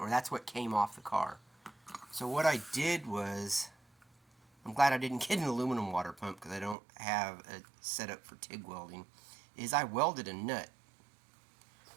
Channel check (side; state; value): left; drops out; at 6.8 s